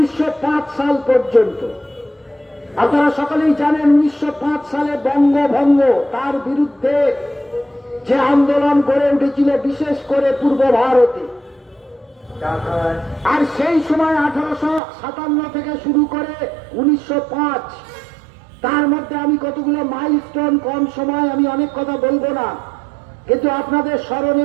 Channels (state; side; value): drops out; left; at 14.8 s